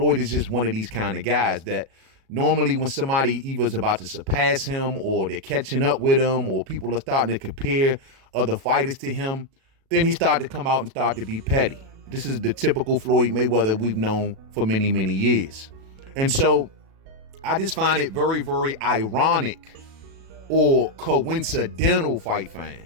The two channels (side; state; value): left; late; 37 ms